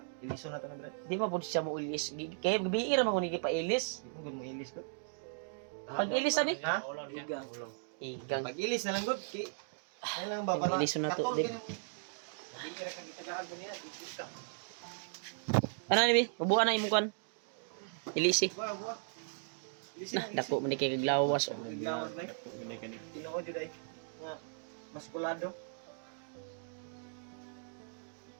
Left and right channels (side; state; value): left; silent; digital silence